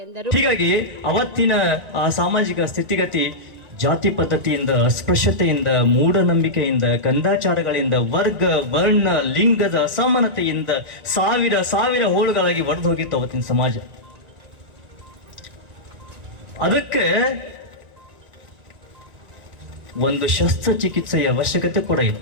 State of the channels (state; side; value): late; left; 1.9 ms